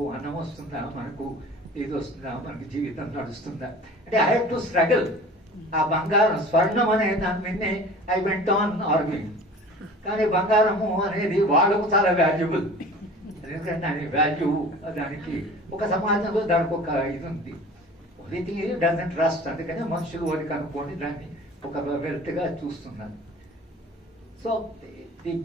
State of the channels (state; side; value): normal; both; correlation 0.42